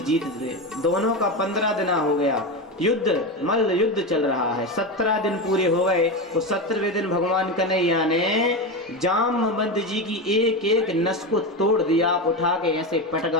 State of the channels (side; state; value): both; normal; correlation 0.18